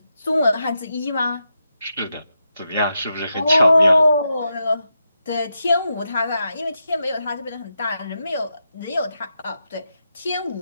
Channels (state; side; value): inverted; both; correlation -0.86